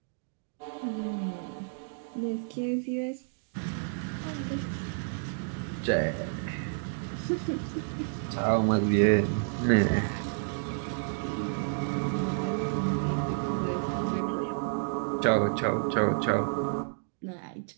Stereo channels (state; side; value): silent; left; digital silence